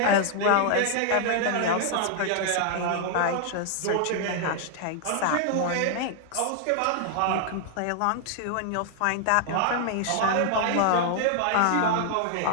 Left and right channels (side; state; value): both; different; correlation 0.00